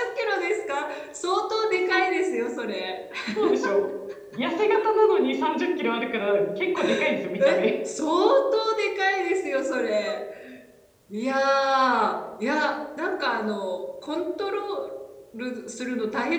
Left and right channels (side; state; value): both; identical; correlation 1.00